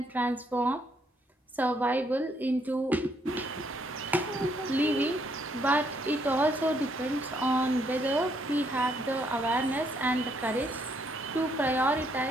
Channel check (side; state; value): both; normal; correlation 0.71